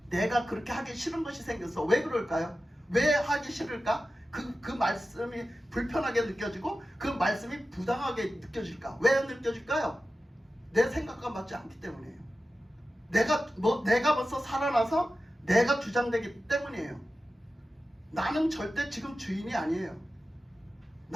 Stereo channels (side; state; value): both; normal; correlation 0.93